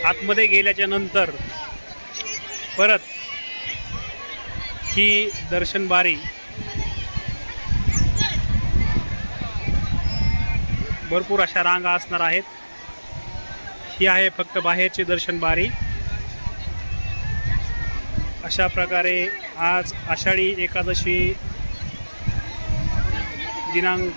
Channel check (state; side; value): inverted; both; correlation -1.00